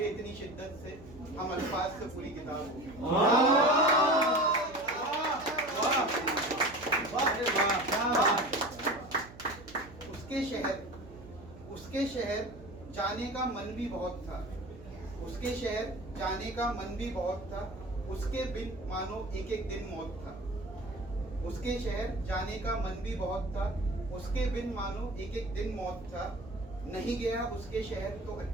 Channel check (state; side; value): noise; right; hum, 18 dB below the sound